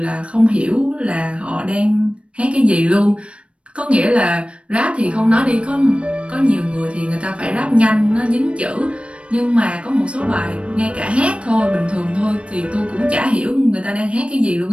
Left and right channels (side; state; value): left; late; 0.060 ms